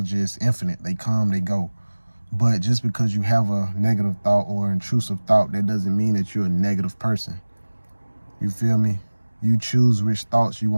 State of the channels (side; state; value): both; inverted; correlation -1.00